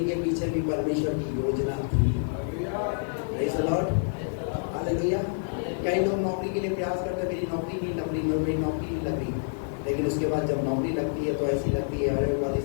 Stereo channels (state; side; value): silent; right; digital silence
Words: के पीछे भी परमेश्वर की योजना थी। Praise the Lord, hallelujah. कई लोग नौकरी के लिए प्रयास करते, मेरी नौकरी नहीं लग रही, मेरी नौकरी नहीं लग रही। लेकिन उसके बाद जब नौकरी लगती है तो ऐसी लगती है अरे वाली